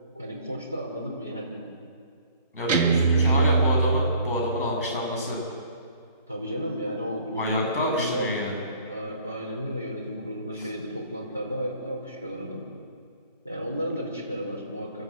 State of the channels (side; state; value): both; inverted; correlation -0.55